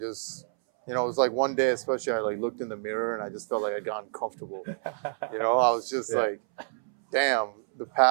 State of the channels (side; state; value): left; silent; 59 dB below the other